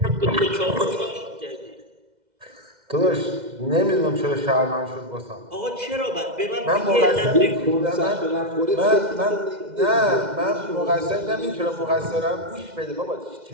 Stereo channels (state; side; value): late; left; 2.0 ms